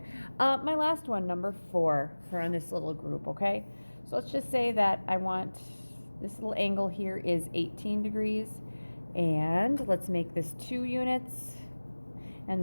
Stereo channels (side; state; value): both; inverted; correlation -1.00